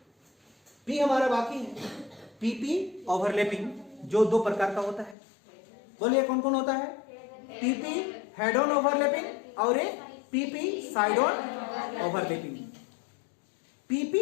पी हमारा बाकी है, पीपी ओवरलैपिंग, जो दो प्रकार का होता है। बोलिए कौन कौन होता है? पीपी हेड ऑन ओवरलैपिंग और एक PP side on overlapping.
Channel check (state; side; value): drops out; right; at 5.2 s